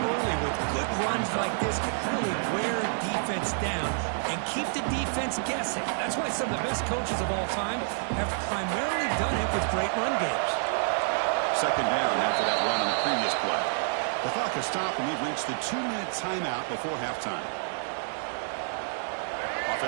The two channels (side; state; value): left; silent; 59 dB below the other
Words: early with good runs like this can really wear defense down and keep the defense guessing. That's why some of the best coaches of all time have primarily done it with great run games. Second down after that run on the previous play. The clock has stopped and we've reached the 2-minute timeout before halftime.